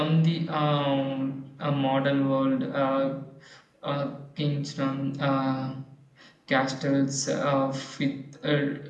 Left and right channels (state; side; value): identical; both; correlation 1.00